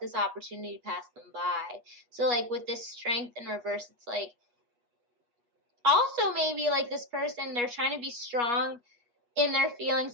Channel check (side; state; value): left; late; 8.3 ms